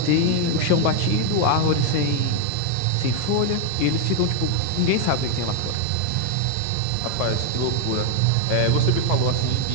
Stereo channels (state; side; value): different; both; correlation 0.00